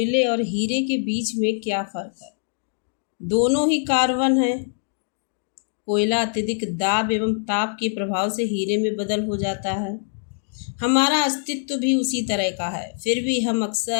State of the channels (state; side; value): silent; right; digital silence